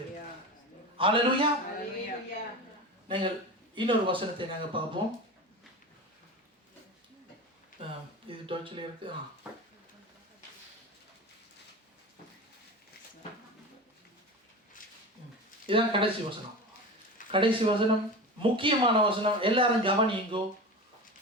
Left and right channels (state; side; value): normal; both; correlation 0.28